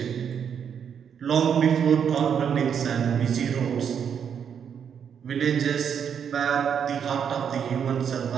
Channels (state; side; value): quieter; left; 7.8 dB